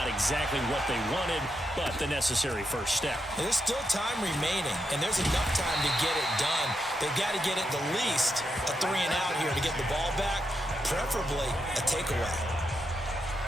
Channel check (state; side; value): normal; both; correlation 0.83